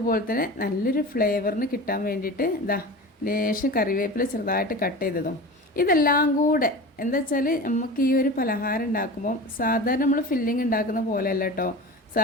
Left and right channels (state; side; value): normal; both; correlation 0.32